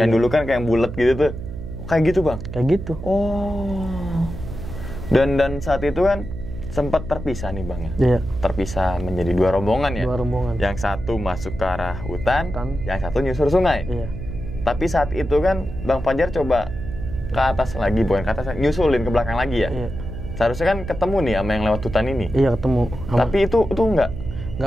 dulu kan kayak bulat gitu tuh. Kayak gitu Bang? Kayak gitu. Oh. Dan saat itu kan sempat terpisah nih Bang ya? Iya. Terpisah menjadi 2 rombongan ya? 2 rombongan. Yang satu masuk ke arah hutan, yang satu nyusur sungai. Iya. Tapi saat itu kan Bang Fajar coba ke atas lagi, bukan ke atas, nyusulin ke belakang lagi ya? Iya. Seharusnya kan ketemu nih sama yang lewat hutan ini. Iya, ketemu. Tapi itu enggak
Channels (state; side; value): noise; right; hum, 9 dB below the sound